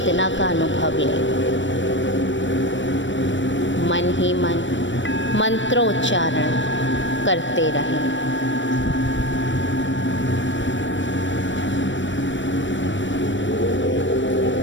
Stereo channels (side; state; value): right; late; 0.54 ms